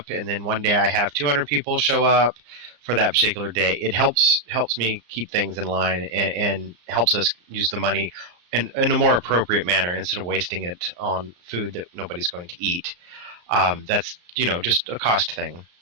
and then one day I have 200 people show up for that particular day, it helps me keep things in line and helps us use the money in a more appropriate manner instead of wasting it on food that nobody's going to eat. That's, just a cost thing.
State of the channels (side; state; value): left; late; 34 ms